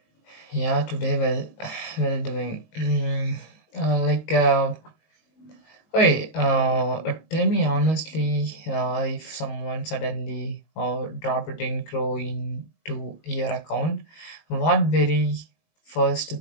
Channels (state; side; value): late; right; 19 ms